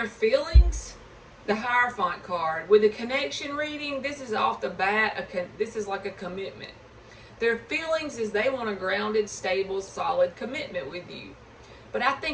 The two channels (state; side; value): identical; both; correlation 1.00